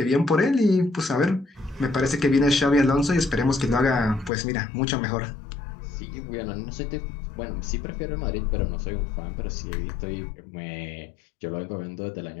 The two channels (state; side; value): drops out; right; at 4.3 s